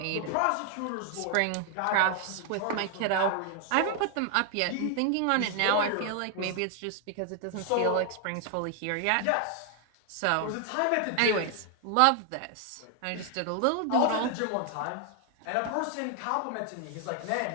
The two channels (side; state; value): both; different; correlation 0.00